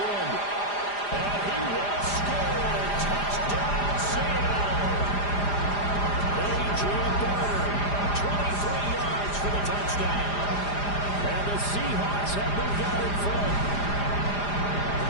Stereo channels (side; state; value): right; late; 4.9 ms